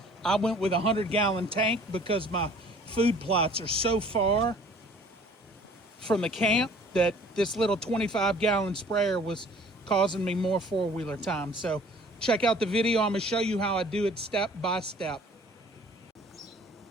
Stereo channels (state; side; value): normal; both; correlation 0.52